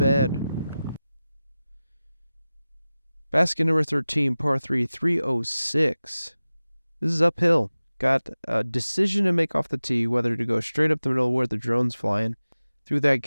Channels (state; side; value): inverted; both; correlation -0.96